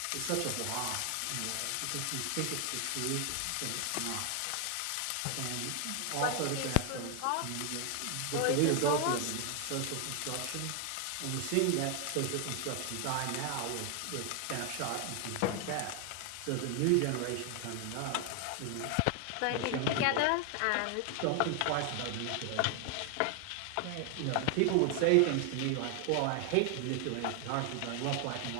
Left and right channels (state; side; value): different; both; correlation 0.00